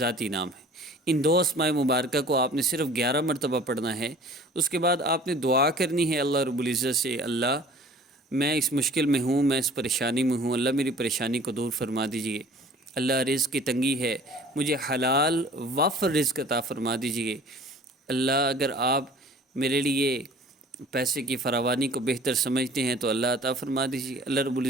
نام ہے۔ ان 2 اسماء مبارکہ کو آپ نے صرف 11 مرتبہ پڑھنا ہے۔ اس کے بعد آپ نے دعا کرنی ہے اللہ رب العزت سے، اللہ میں اس مشکل میں ہوں، میں اس پریشانی میں ہوں، اللہ میری پریشانی کو دور فرما دیجئے۔ اللہ رزق کی تنگی ہے، مجھے حلال وافر رزق عطا فرما دیجئے۔ اللہ اگر آپ میرے لیے پیسے کی فراوانی کو بہتر سمجھتے ہیں تو اللہ عطا فرما دیجیے۔ اللہ رب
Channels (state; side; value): normal; both; correlation 0.48